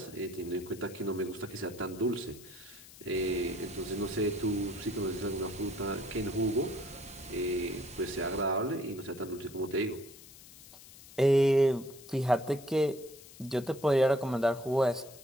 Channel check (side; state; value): left; noise; hiss, 19 dB below the sound